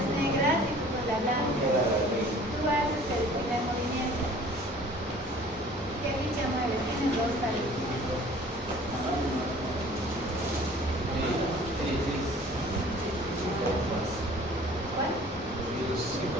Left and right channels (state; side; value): normal; both; correlation 0.50